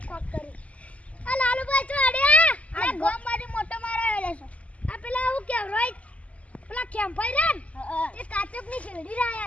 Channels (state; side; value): late; right; 0.068 ms